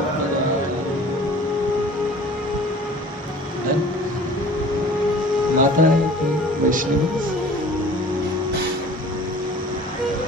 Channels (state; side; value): normal; both; correlation 0.46